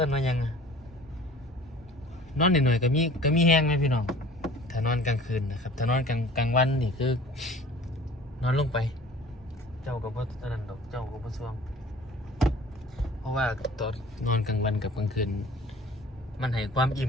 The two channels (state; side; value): normal; both; correlation 0.47